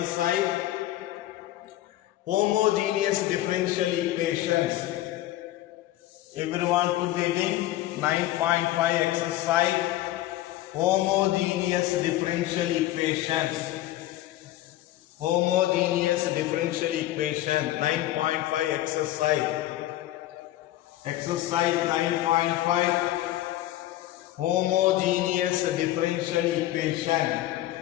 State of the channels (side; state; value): right; quieter; 14.9 dB